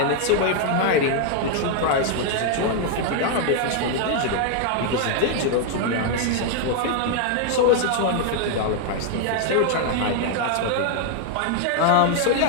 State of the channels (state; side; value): different; both; correlation 0.00